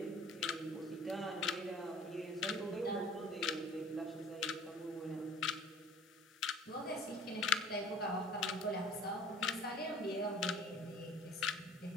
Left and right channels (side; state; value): both; normal; correlation 0.48